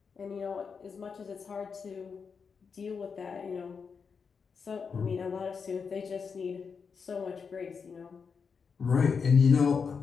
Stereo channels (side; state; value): right; quieter; 5.8 dB